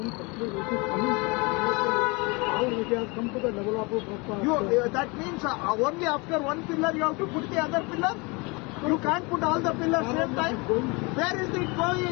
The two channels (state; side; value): quieter; right; 27.8 dB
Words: It has come to the level of that means only after 1 pillar you have to put the other pillar? You can't put all the pillars same time? Where is it